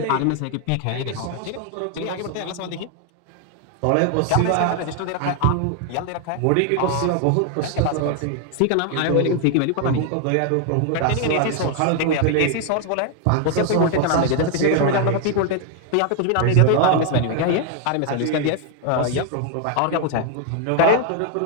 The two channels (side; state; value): both; different; correlation 0.00